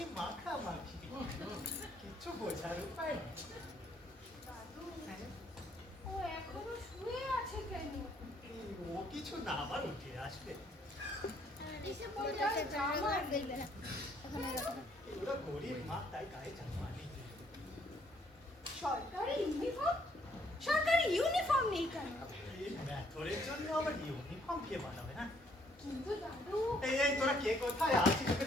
মাখামাখি। কিচ্ছু বোঝার উপায় নেই। দাদু, ও এখনো শুয়ে আছে কেন? ও কিছু না, আবার উঠে আসবে। এসে পড়ে আর জামা দেখবে না। ওরা গরিব মা, তাই গায়ে জামা নেই। সরকারি ইউনিফর্ম? সরকারি ইউনিফর্ম নেই কেন? এই ম্যাথরের জন্য আবার ইউনিফর্ম কে বানাবে না? কিন্তু দাদু, এই তোরা কে কোথায় আছিস?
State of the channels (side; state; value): both; normal; correlation 0.66